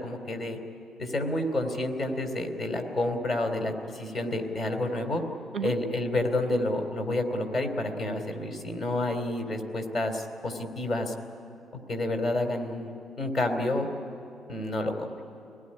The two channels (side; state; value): both; normal; correlation 0.75